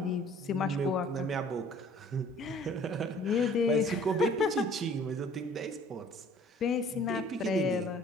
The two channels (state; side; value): normal; both; correlation 0.53